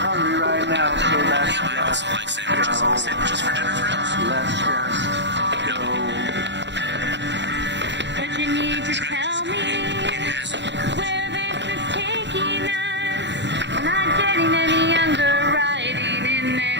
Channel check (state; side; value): late; left; 0.52 ms